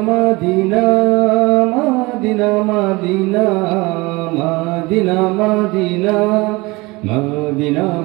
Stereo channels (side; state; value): left; quieter; 23.4 dB